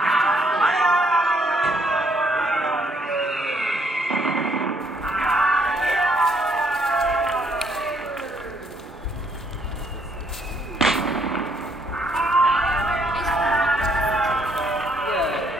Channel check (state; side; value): normal; both; correlation 0.69